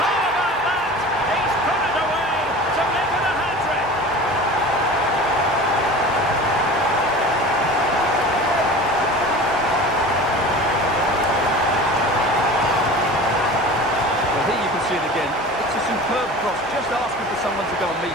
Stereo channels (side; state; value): both; normal; correlation 0.37